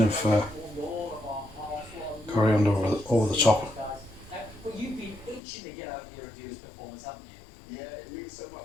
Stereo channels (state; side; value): drops out; right; at 5.4 s